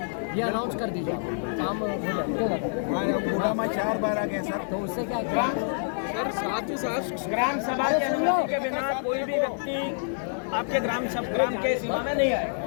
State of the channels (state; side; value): silent; right; digital silence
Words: ये अनाउंस कर दीजिए, काम हो जाए। क्यों दादा 4 बार आ गए सर, तो उससे क्या सर, साथ ही साथ ग्राम सभा के अनुमति के बिना कोई भी व्यक्ति आपके ग्राम के सीमा में नहीं आएगा।